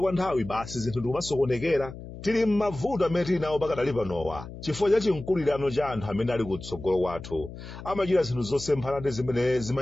nthawi basi zinthu ndikumasokonekera. Tili m'mavuto amene tili nawo pakadali panowa chifukwa cha chinkulirano cha anthu amene ali kutsogolo kwathu, amachita zinthu zosemphana ndi zimene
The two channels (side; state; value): left; noise; hum, 13 dB below the sound